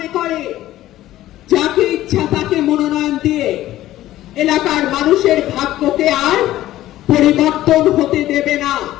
করে যাকে ইচ্ছা তাকে মনোনয়ন দিয়ে এলাকার মানুষের ভাগ্যকে আর পরিবর্তন হতে দেবে না,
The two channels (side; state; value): right; quieter; 14.6 dB